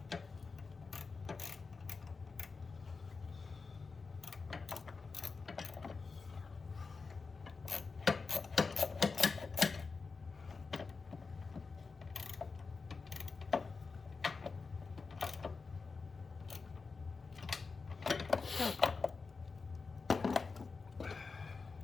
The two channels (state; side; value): quieter; right; 4.5 dB